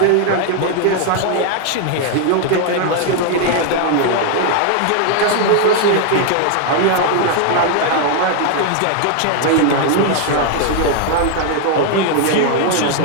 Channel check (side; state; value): both; different; correlation 0.00